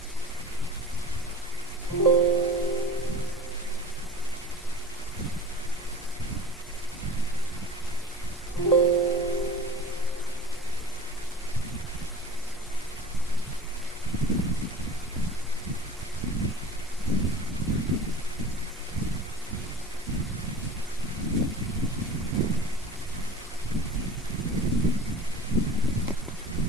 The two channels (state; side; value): normal; both; correlation 0.38